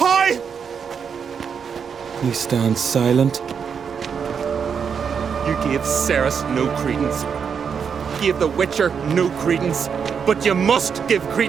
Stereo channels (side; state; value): left; quieter; 6.7 dB